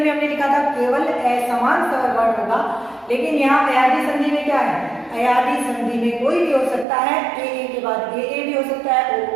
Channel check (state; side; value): drops out; left; at 6.9 s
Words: हमने लिखा था केवल असमान स्वर वर्ण होगा, लेकिन यहाँ अयादी संधि में क्या है, अयादी संधि में कोई भी हो सकता है, ए के बाद ए भी हो सकता है,